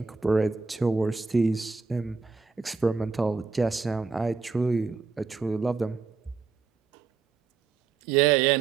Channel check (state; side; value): quieter; left; 4.8 dB